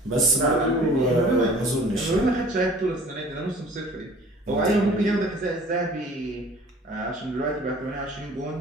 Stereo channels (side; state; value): both; normal; correlation 0.48